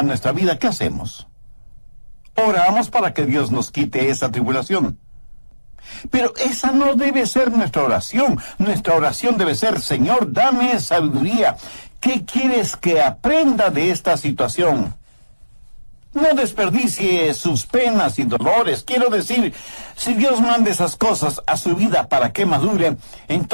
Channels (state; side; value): inverted; both; correlation -1.00